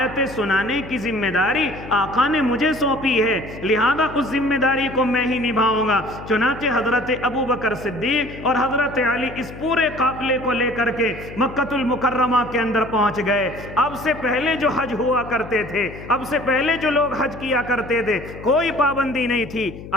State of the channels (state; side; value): noise; left; hum, 13 dB below the sound